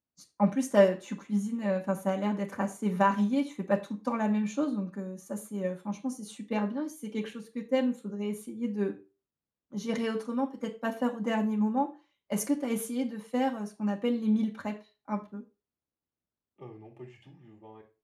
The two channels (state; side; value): identical; both; correlation 1.00